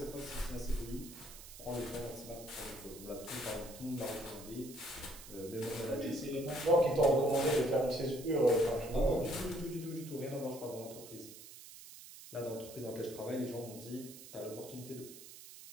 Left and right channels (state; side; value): noise; right; hiss, 15 dB below the sound